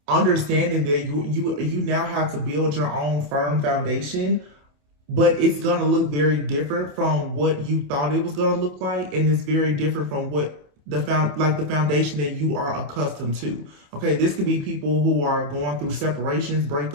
understanding that you now have to build your own firm foundation, but it's going to look very different from what you thought it was going to look like, and it's very different from what the foundation that you are accustomed to. Okay, this could be people who are going through separations,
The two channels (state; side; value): late; left; 28 ms